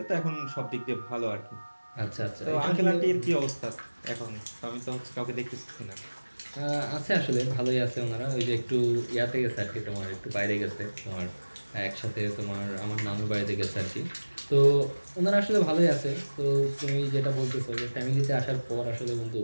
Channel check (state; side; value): inverted; both; correlation -1.00